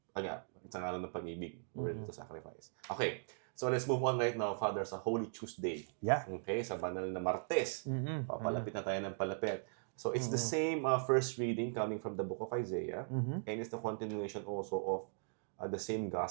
Again, it's ang alam ng pag-ibig. We're ready to sacrifice. Okay. So let's move on right now, Father, sa Holy Tuesday. Yeah. Okay, sa banal na Martes. Papalapit na tayo ng palapit. So it's the same first reading coming from the book of Isaiah, and it's the continuation also of the same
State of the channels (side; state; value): left; silent; digital silence